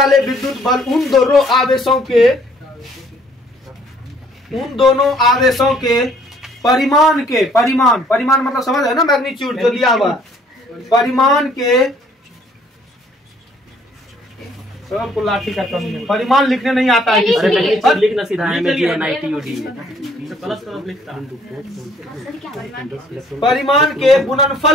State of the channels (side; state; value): both; normal; correlation 0.61